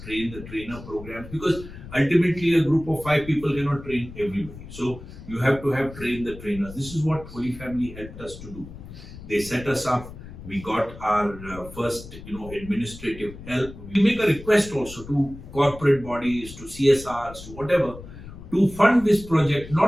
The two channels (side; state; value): left; noise; rumble, 14 dB below the sound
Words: train the trainer programs, because ultimately a group of 5 people cannot train everybody. So you have to have trained the trainers. This is what Holy Family helped us to do. They set us up. We got our first, administrative help. We make a request also to corporate bodies, to CSRs, to whatever, to fund this project,